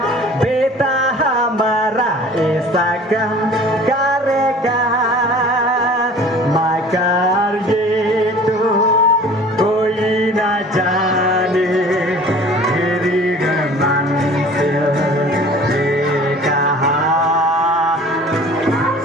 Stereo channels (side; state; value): both; normal; correlation 0.47